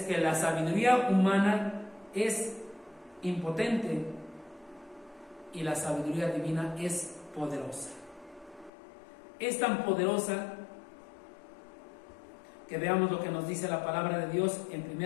que la sabiduría humana es impotente y la sabiduría divina es poderosa. Es tan poderosa que veamos lo que nos dice la palabra de Dios en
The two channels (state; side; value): drops out; right; at 8.7 s